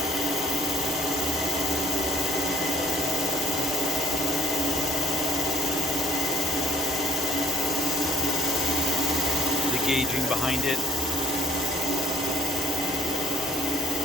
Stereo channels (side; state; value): both; normal; correlation 0.61